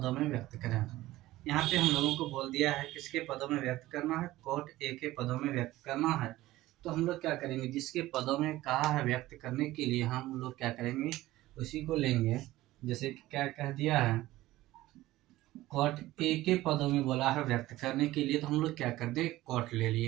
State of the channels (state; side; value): quieter; left; 16.8 dB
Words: में व्यक्त करें। यहाँ पे हम लोगों को बोल दिया है किसके पदों में व्यक्त करना है, कॉट ए के पदों में व्यक्त करना है। तो हम लोग क्या करेंगे, जिसके पदों में कहा है व्यक्त करने के लिए हम लोग क्या करेंगे, उसी को लेंगे। जैसे कि क्या कह दिया है, कॉट ए के पदों में बोला है व्यक्त करने के लिए, तो हम लोग क्या कर दे, कॉट ले